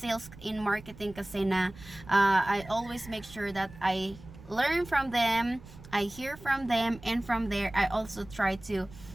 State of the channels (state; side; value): noise; right; rumble, 18 dB below the sound